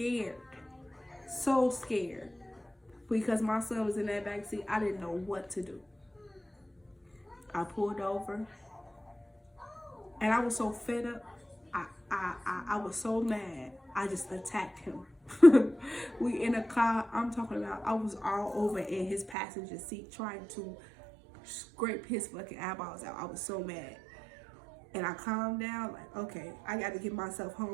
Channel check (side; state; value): left; drops out; at 19.4 s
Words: because my son was in that back seat. I didn't know what to do. I pulled over, and I was so fed up. I was so mad. I just attacked him. We in a car. I'm talking about, I was all over in his passenger seat trying to scrape his fucking eyeballs out. I was so mad. And I calmed down, like, okay, I got to get myself